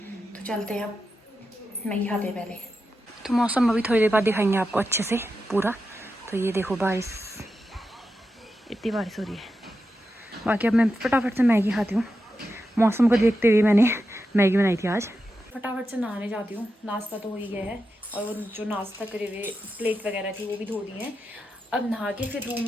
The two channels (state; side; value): normal; both; correlation 0.89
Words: तो चलते हैं, अब मैगी खाते हैं पहले। तो मौसम अभी थोड़ी देर बाद दिखाएंगे आपको अच्छे से पूरा। तो ये देखो बारिश, इतनी बारिश हो रही है। बाकी अब मैं फटाफट से मैगी खाती हूँ, मौसम को देखते हुए मैंने मैगी बनाई थी आज। फटाफट से नहाने जाती हूँ, नाश्ता तो हो ही गया है और वो जो नाश्ता करे हुए प्लेट वगैरह थी वो भी धो दी हैं। अब नहा के फिर रूम